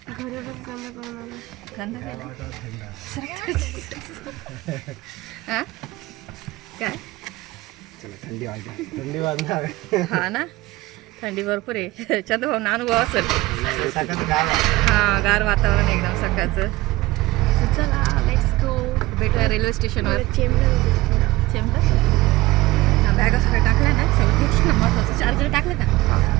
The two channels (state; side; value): quieter; left; 19.1 dB